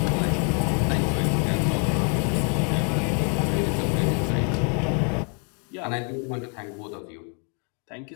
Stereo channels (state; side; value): quieter; right; 39.6 dB